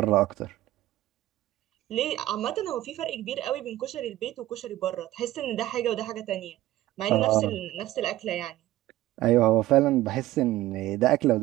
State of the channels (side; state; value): left; quieter; 15.6 dB